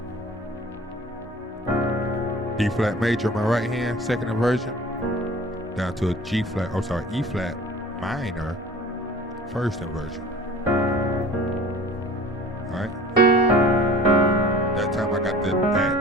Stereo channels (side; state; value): both; normal; correlation 0.44